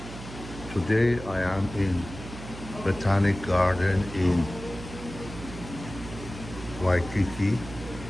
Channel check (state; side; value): noise; right; hum, 12 dB below the sound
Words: Today I am in Botanic Garden in Waikiki.